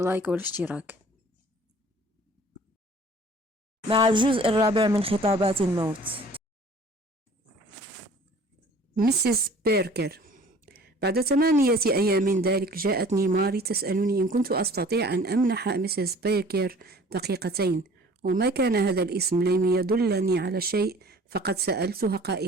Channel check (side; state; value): both; normal; correlation 0.49